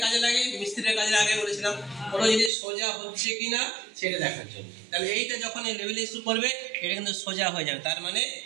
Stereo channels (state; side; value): drops out; left; at 2.5 s